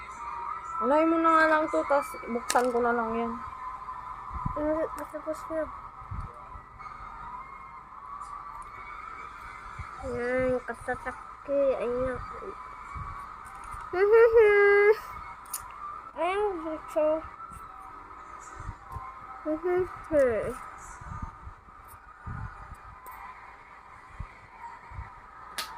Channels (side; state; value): both; identical; correlation 1.00